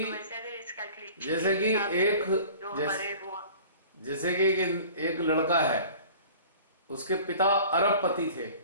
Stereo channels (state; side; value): inverted; both; correlation -0.44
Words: एक लड़का है, उसके पिता अरबपति थे,